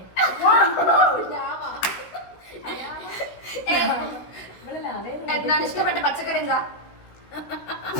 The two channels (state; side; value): late; right; 16 ms